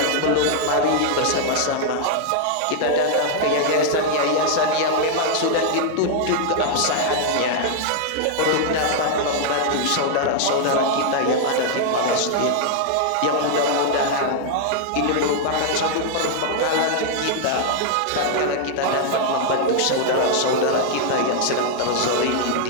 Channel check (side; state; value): both; different; correlation -0.01